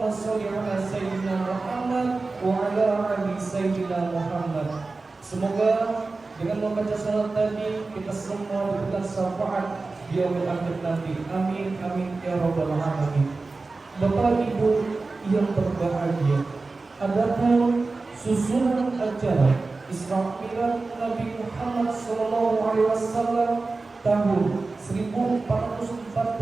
sholli ala sayyidina Muhammad wa ala ali sayyidina Muhammad. Semoga dengan membaca salat tadi kita semua diberikan syafaat di yaumil akhir nanti. Amin amin ya rabbal alamin. Bapak Ibu yang berbahagia, adapun susunan acara Isra Mi'raj Nabi Muhammad SAW tahun 1440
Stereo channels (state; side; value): quieter; left; 3.7 dB